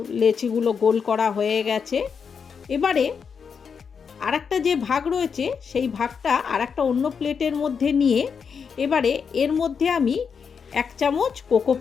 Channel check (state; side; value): quieter; right; 6.3 dB